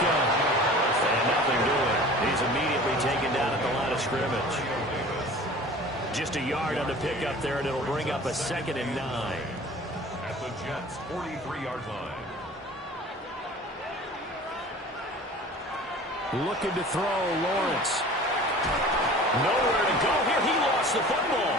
And nothing doing. He's immediately taken down at the line of scrimmage. Just a yard on the pickup there, and it'll bring up a 2nd and 9. At the Jets' 43-yard line. Looking to throw, Lawrence. Nowhere to go here. He lost the football.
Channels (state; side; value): normal; both; correlation 0.43